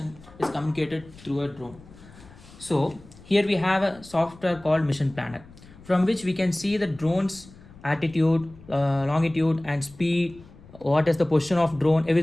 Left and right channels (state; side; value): noise; left; rumble, 22 dB below the sound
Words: is communicated through a drone. So here we have a software called Mission Planner, from which we can see the drone's altitude, longitude and speed, what is the position of drone,